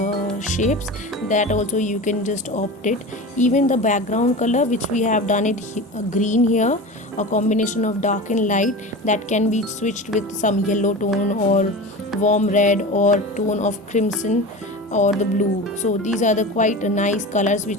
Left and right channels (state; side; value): normal; both; correlation 0.30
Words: shapes, that also you can just opt it. Even the background color which we have done it green here, a combination of dark and light, that can be switched with some yellow tone or warm red or tone of crimson or the blue. So these are the quite nice colors